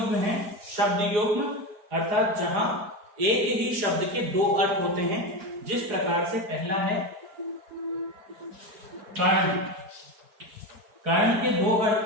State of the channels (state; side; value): late; left; 4.9 ms